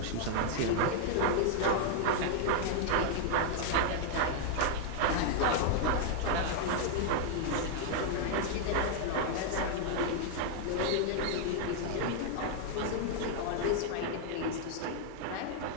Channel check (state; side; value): different; both; correlation 0.00